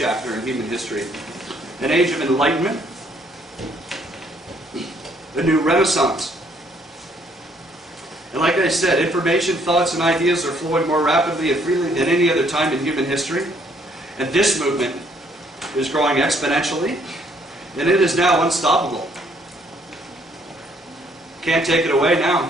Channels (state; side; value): normal; both; correlation 0.66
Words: in human history. An age of enlightenment. A new renaissance. And like I said, information, thoughts, and ideas are flowing more rapidly and freely than any other time in human history. And this movement is growing exponentially, and it is now unstoppable. Can't take it away now.